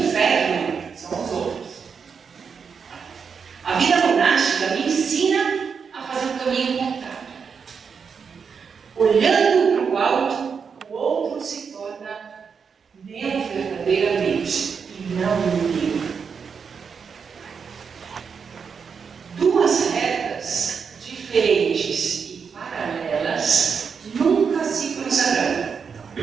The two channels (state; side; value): quieter; left; 6.1 dB